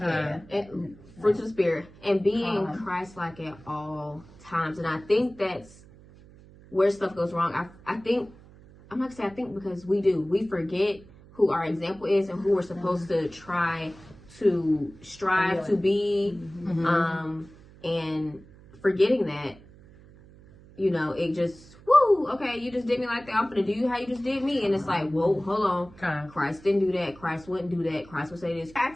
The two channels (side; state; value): right; noise; hum, 22 dB below the sound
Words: And fruits of the spirit. And being Christ-like at all times. And I think that's where stuff goes wrong. I think, I'm not going to say I think, because we forget who our example is and who we're supposed to try to strive to be. And forgetting that, you know, it just, woo, okay, you just did me like that. I'm going to do you how you just did me. And it's like, whoa, hold on. Christ didn't do that. Christ wouldn't do that. Christ would say this. We have